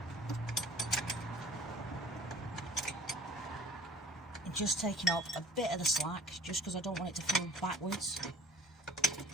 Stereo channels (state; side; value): normal; both; correlation 0.50